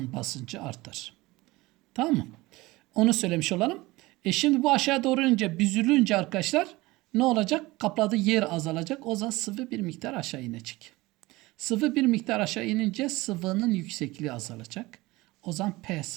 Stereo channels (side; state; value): left; quieter; 20.6 dB